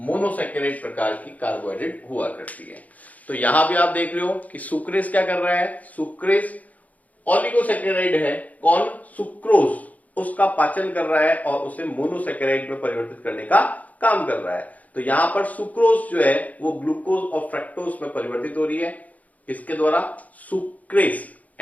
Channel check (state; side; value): late; right; 0.074 ms